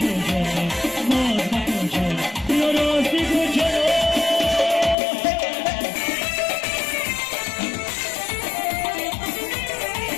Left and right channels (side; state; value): right; drops out; at 5.0 s